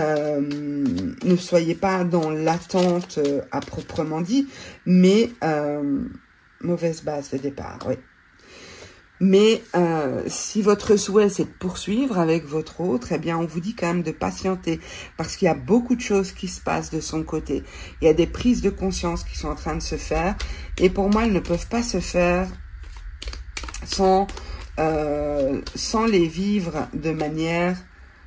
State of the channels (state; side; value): identical; both; correlation 1.00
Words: soyez pas dans l'attente à proprement dit, mais mauvaise base de départ, oui. Mais si votre souhait, c'est de poursuivre avec votre autre, eh bien, on vous dit quand même de patienter parce qu'il y a beaucoup de choses qui se passent de son côté. Il y a des prises de conscience qui sont en train de se faire et pour moi, elles ne peuvent pas se faire sans les vivre de manière,